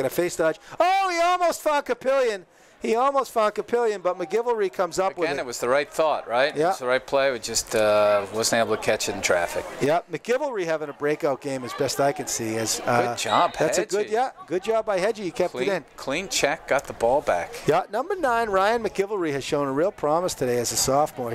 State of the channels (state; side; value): identical; both; correlation 1.00